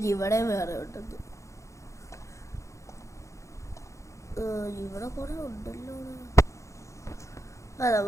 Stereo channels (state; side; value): late; right; 0.15 ms